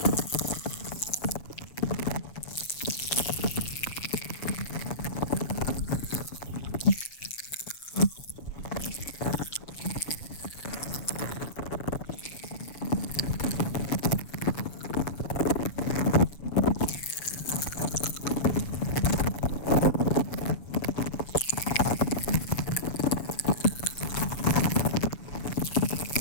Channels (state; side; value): late; right; 7.1 ms